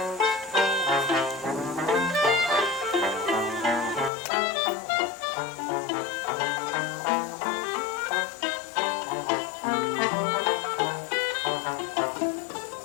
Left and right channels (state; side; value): drops out; right; at 4.1 s